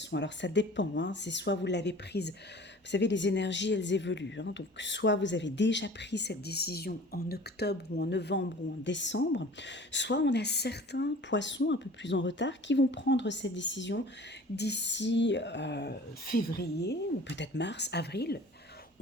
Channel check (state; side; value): normal; both; correlation 0.44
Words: Alors ça dépend, c'est soit vous l'avez prise, vous savez les énergies elles évoluent, donc soit vous avez déjà pris cette décision en octobre ou en novembre ou en décembre, soit on a certains poissons un peu plus en retard qui vont prendre cette décision d'ici février ou peut-être mars, avril.